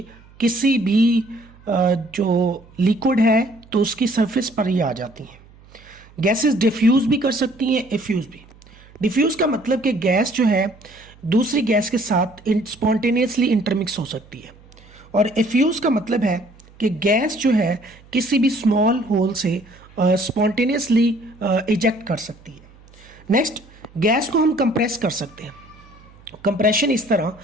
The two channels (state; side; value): noise; right; hum, 25 dB below the sound